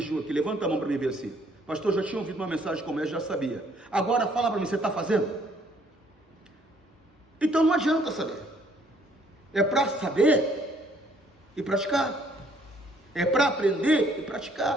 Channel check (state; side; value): normal; both; correlation 0.64